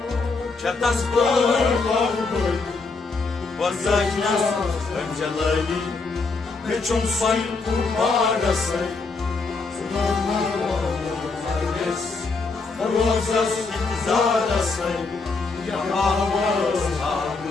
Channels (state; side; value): quieter; right; 4.0 dB